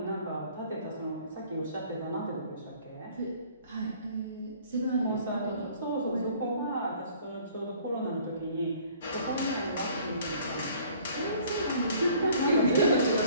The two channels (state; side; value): inverted; both; correlation -0.55